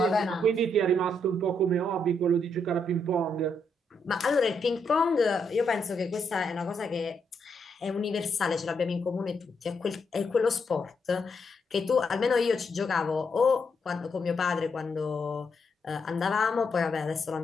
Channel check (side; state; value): both; normal; correlation 0.78